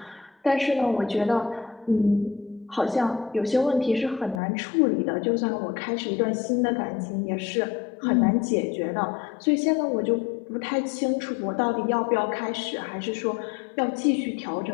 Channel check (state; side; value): drops out; right; at 4.4 s